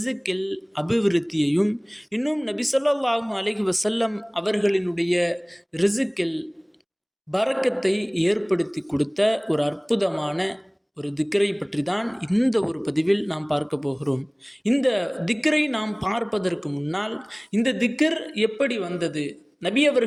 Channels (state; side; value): identical; both; correlation 1.00